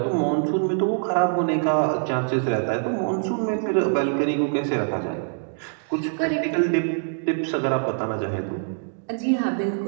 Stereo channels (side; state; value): left; silent; digital silence